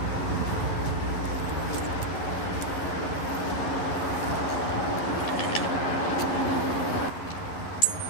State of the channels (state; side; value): late; right; 11 ms